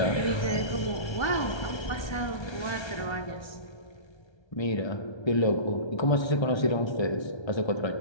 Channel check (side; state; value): right; late; 1.3 ms